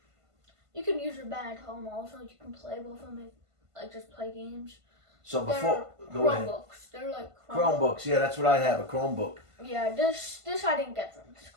You can use them at home also. You can play with them, like just play games. So before, go Chromebooks. They're like Chromebooks. Yeah, that's what I have, a Chromebook. Yeah, this I didn't get from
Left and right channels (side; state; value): left; late; 1.5 ms